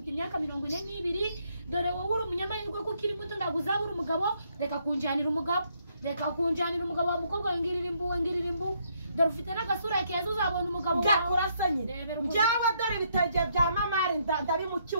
imyaka 42 dore wowe uri umunyamahirwe ko kiri muto ndaguzabura umugabo reka kunjanira umugabo wa mukobwa ngirira imbu dore ufite n'agasura keza uzabona umugabo wawe byakurasanye byawe dore ibitege bya mamari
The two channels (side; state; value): both; inverted; correlation -0.73